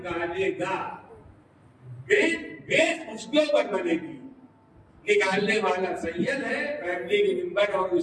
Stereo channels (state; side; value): identical; both; correlation 1.00